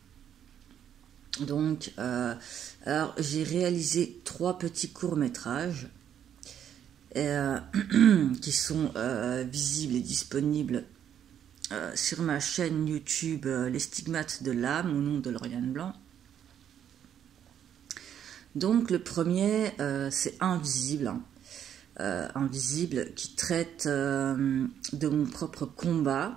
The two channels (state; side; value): quieter; left; 9.5 dB